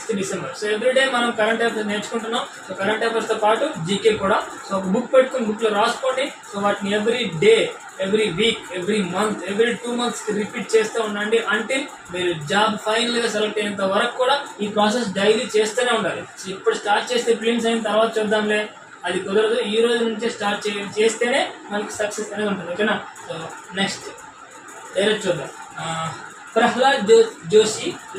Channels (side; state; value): both; identical; correlation 1.00